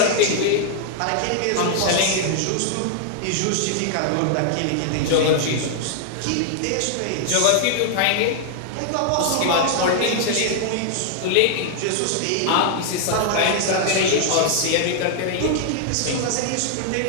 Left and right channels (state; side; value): different; both; correlation 0.00